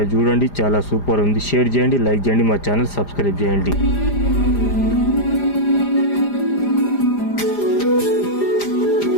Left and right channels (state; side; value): late; right; 4.9 ms